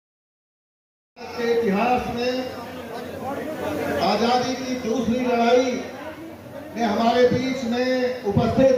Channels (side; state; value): both; identical; correlation 1.00